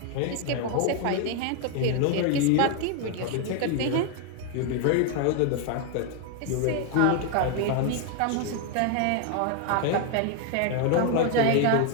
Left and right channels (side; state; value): both; different; correlation 0.00